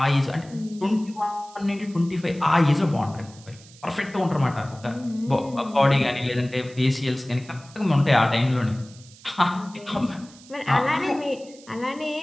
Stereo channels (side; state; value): right; noise; hiss, 23 dB below the sound